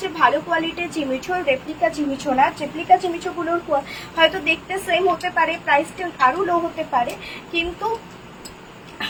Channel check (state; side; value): identical; both; correlation 1.00